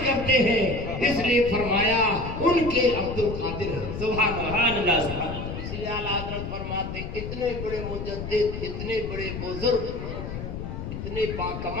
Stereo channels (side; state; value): left; noise; rumble, 7 dB below the sound